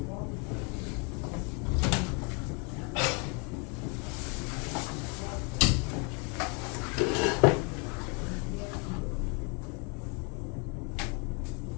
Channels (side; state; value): right; quieter; 34.0 dB